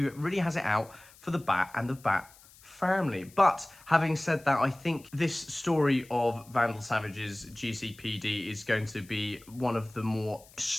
really has it out for the Bat and the Bat family. But having said that, I think this story of Vandal Savage's GCPD is going to be one of the more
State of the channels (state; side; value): noise; left; hiss, 24 dB below the sound